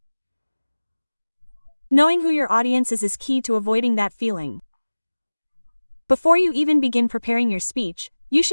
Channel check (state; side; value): inverted; both; correlation -1.00